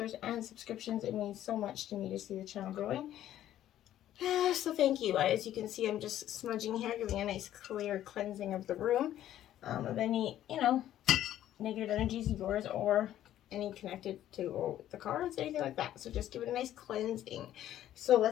and subscriptions. It means so much to me to see the channel growing. So thank you. As you can see, I'm just smudging here, giving a nice clear cleansing of the room of any, negative energies of yours or any connected to the cards, anything like that. So just give it a nice cleansing. So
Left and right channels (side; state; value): right; quieter; 12.3 dB